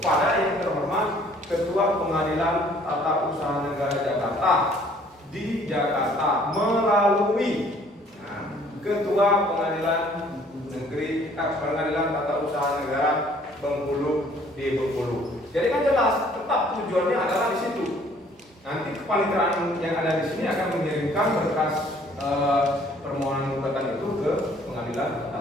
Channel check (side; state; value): both; normal; correlation 0.58